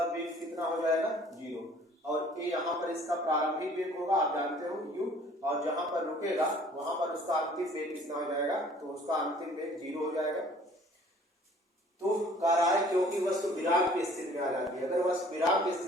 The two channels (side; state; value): both; normal; correlation 0.53